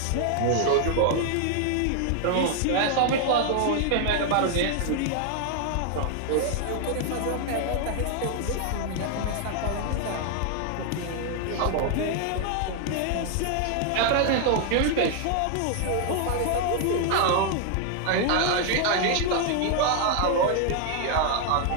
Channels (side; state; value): both; different; correlation 0.00